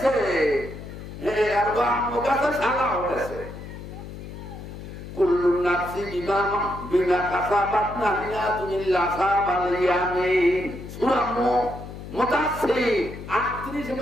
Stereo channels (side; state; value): left; noise; hum, 12 dB below the sound